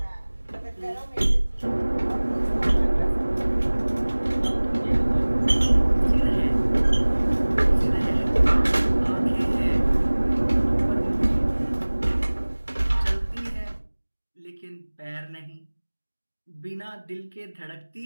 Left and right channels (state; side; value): inverted; both; correlation -1.00